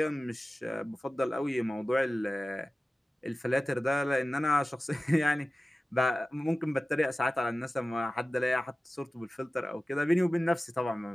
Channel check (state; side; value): normal; both; correlation 0.96